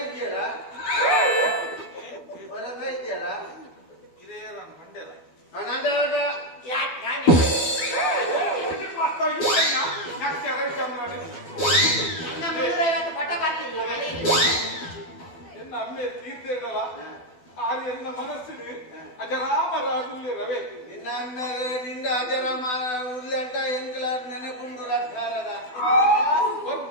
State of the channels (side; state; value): right; late; 12 ms